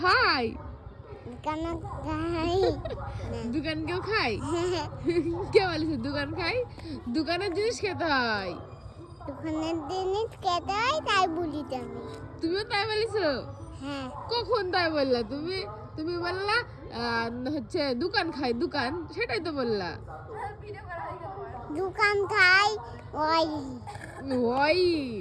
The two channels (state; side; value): identical; both; correlation 1.00